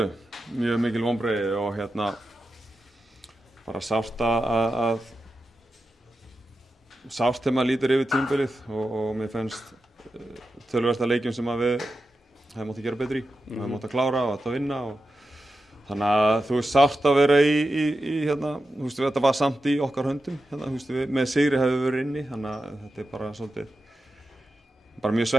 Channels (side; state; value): both; normal; correlation 0.91